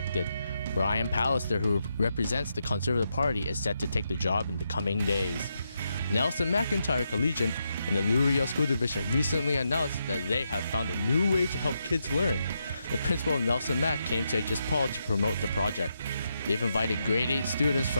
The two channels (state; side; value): inverted; both; correlation -0.83